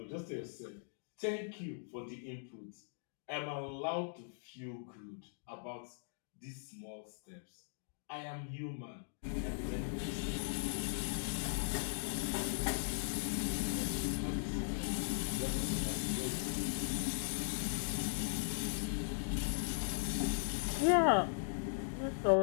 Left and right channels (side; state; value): right; silent; digital silence